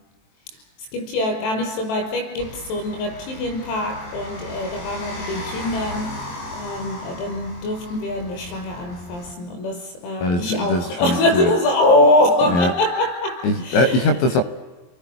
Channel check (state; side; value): late; right; 23 ms